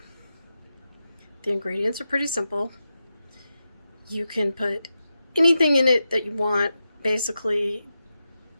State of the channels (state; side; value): inverted; both; correlation -0.90